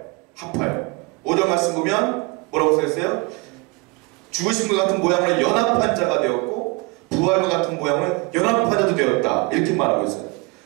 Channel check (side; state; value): left; quieter; 27.0 dB